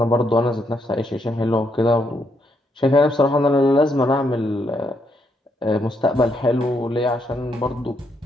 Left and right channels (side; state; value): both; normal; correlation 0.76